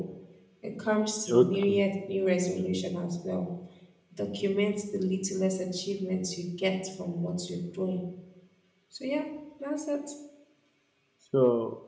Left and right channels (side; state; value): both; identical; correlation 1.00